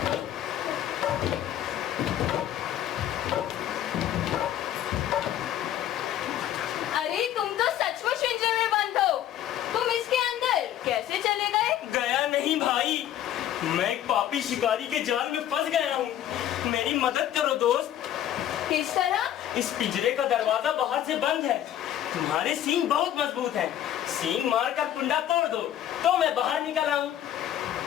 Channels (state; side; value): quieter; right; 11.5 dB